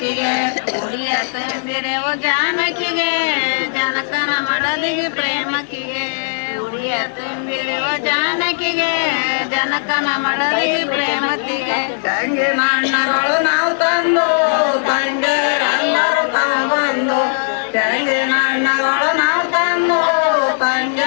ಉಡಿಯ ತುಂಬಿರವು ಜಾನಕಿಗೆ ಜನಕನ ಮಡದಿಗೆ ಪ್ರೇಮಕಿಗೆ ಉಡಿಯ ತುಂಬಿರುವ ಜಾನಕಿಗೆ ಜನಕನ ಮಡದಿಗೆ ಪ್ರೇಮತಿಗೆ ತಂಗಿನ ಹಣ್ಣಗಳು ನಾವು ತಂದು ತಂಗಿಯರೆಲ್ಲರೂ ತಾವು ಬಂದು ತಂಗಿನ ಹಣ್ಣಗಳು ನಾವು ತಂದು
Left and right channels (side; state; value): right; silent; 68 dB below the other